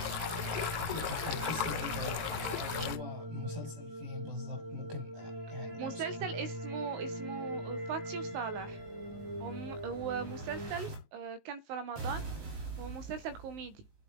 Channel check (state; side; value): late; left; 19 ms